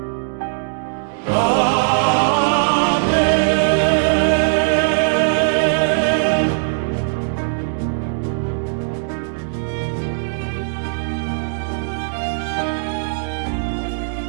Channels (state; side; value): silent; left; digital silence